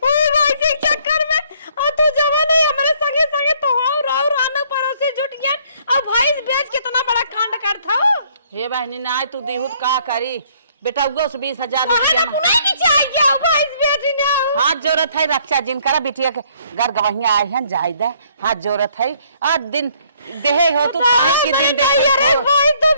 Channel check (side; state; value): both; inverted; correlation -0.63